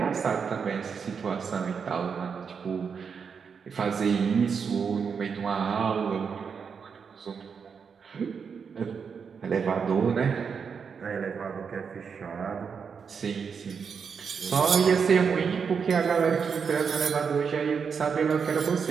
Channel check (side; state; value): left; quieter; 6.2 dB